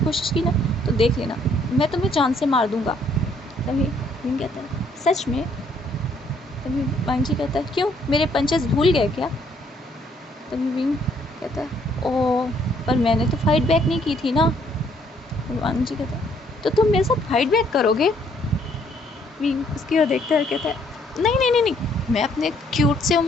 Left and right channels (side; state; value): both; normal; correlation 0.66